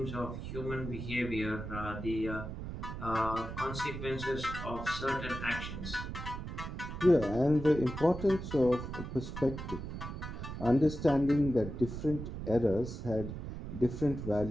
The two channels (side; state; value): right; noise; rumble, 7 dB below the sound